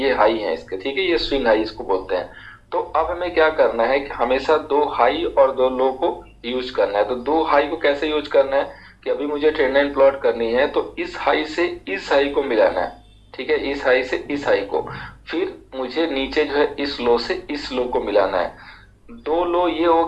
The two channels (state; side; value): identical; both; correlation 1.00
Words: हाई है इसके, ठीक है, ये स्विंग हाई इसको बोलते हैं। तो अब हमें क्या करना है कि हमेशा दो हाई और दो लो को यूज करना है। तो दो हाई को कैसे यूज करना है कि अभी मुझे ट्रेंड लाइन प्लॉट करनी है, तो इस हाई से इस हाई को मिलाना है, ठीक है, इस हाई से इस हाई को, फिर मुझे नीचे जो है इस लो से इस लो को मिलाना है। दो लो ये हो